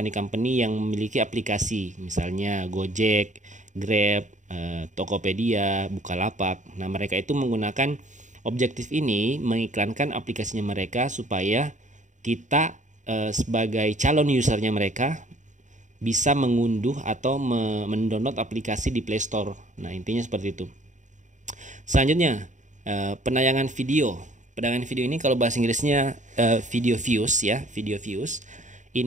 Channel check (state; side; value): late; left; 0.36 ms